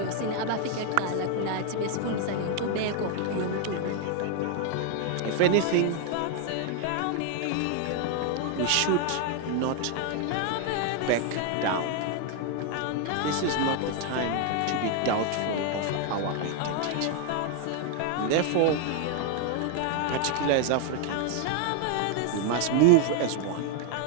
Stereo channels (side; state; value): both; different; correlation 0.01